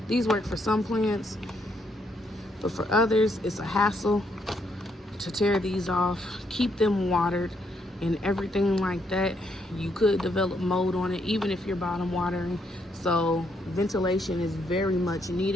These work for some plants, but for others, it's a hassle to tear these off, keep them watered, and everything like that. You could develop mold on it, even if you're bottom watering. So ventilation is very much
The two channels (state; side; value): normal; both; correlation 0.74